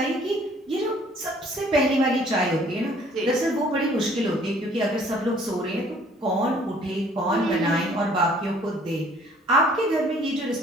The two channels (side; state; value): both; normal; correlation 0.57